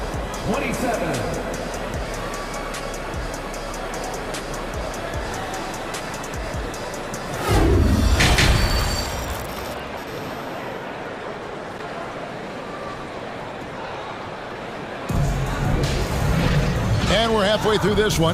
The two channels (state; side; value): identical; both; correlation 1.00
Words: 27. And we're halfway through this